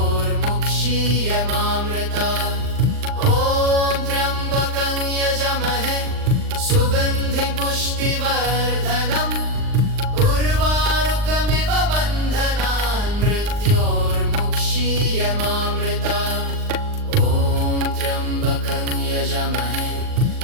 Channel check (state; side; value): late; left; 39 ms